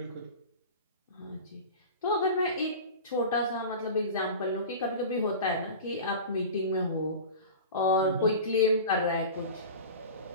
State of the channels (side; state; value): both; inverted; correlation -0.33